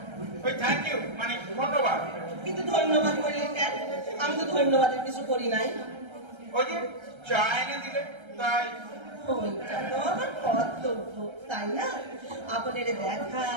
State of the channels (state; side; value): late; left; 1.3 ms